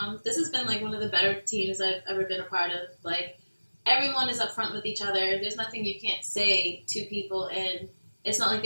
this has been like one of the better teams I've ever been a part of. Like, everyone is upfront with each other. There's nothing you can't say to people, and it's not like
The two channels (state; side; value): inverted; both; correlation -1.00